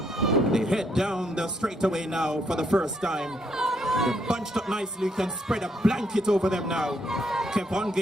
They head down the straightaway now for the first time. They're bunched up nicely. You can spread a blanket over them now.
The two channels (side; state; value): both; normal; correlation 0.73